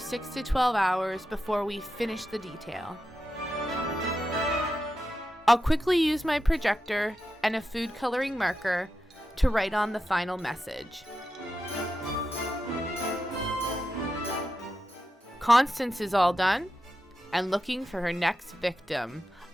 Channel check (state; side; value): normal; both; correlation 0.89